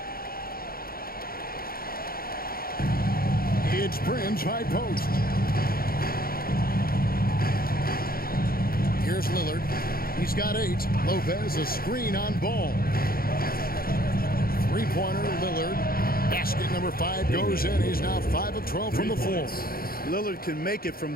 It's Prince high post. Here's Lillard. He's got 8. Lopez a screen on Ball. Three-pointer, Lillard. Basket number 5 goes in. He's now 5 of 12 from the floor. Lillard can make it from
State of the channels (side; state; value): right; late; 0.43 ms